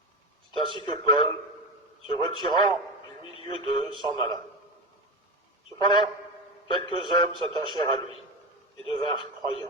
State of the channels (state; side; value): normal; both; correlation 0.21